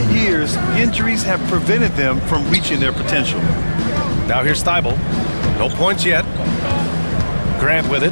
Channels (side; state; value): both; inverted; correlation -1.00